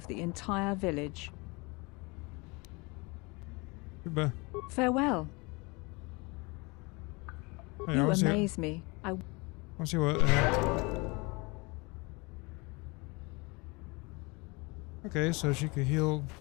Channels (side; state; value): right; quieter; 27.1 dB